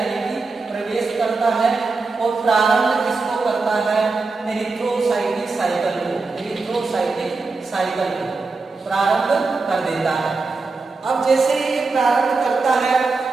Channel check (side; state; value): left; quieter; 4.0 dB